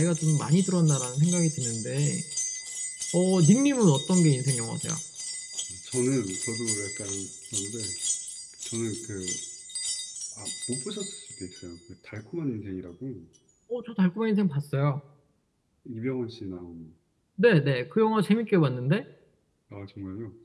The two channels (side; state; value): both; identical; correlation 1.00